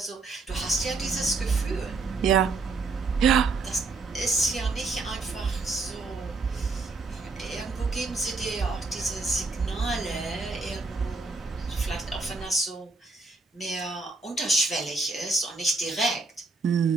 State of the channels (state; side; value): quieter; left; 3.9 dB